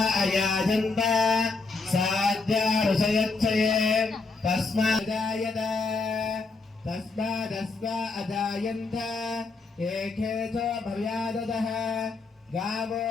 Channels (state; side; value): quieter; right; 3.9 dB